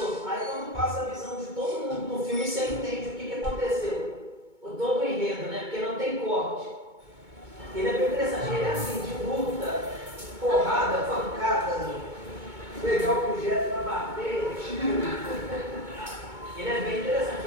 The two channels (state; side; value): late; left; 2.2 ms